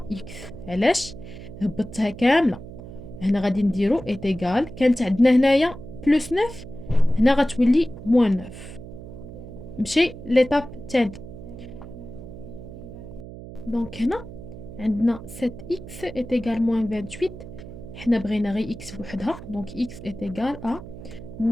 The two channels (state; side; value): noise; right; hum, 13 dB below the sound